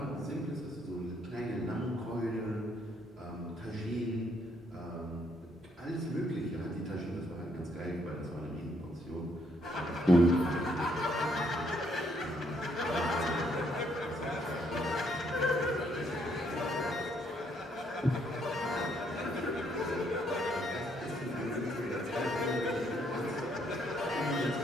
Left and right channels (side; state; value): both; normal; correlation 0.71